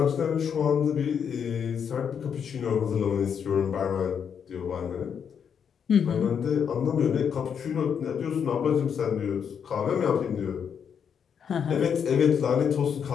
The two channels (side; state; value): right; quieter; 7.5 dB